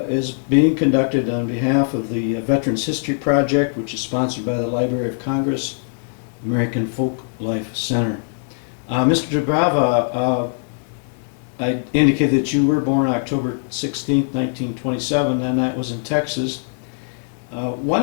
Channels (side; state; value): right; silent; digital silence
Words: is being conducted on behalf of the Veterans History Project, which is sponsored by the Library of Congress, American Folk Life Center. Mr. Doubrava, I indicated that you were born October 16th, 1927, and that was in Texas. Why